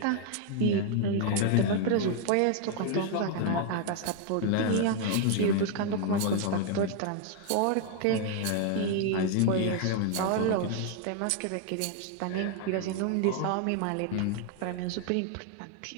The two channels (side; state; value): both; different; correlation 0.00